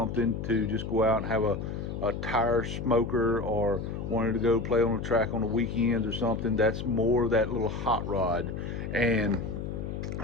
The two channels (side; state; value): left; noise; hum, 5 dB below the sound